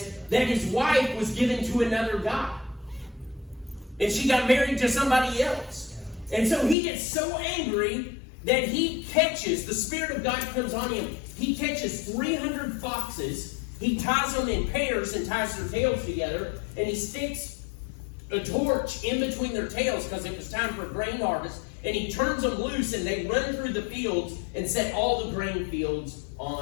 that his wife was given to another guy. And she got married to somebody else. And so he gets so angry that the Spirit of God comes on him. He catches 300 foxes. He ties them in pairs and ties their tails together. And he sticks a torch in between their tails because it was time for grain harvest. And he turns them loose and they run through the fields and set all the grain fields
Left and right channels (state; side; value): drops out; right; at 6.8 s